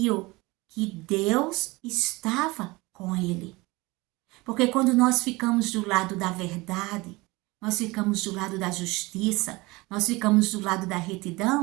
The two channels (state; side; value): quieter; left; 22.8 dB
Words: que Deus estava com ele. Porque quando nós ficamos do lado da verdade, nós ficamos do lado da justiça, nós ficamos do lado da